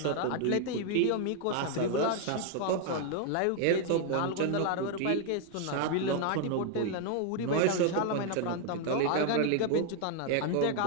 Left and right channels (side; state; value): both; different; correlation 0.00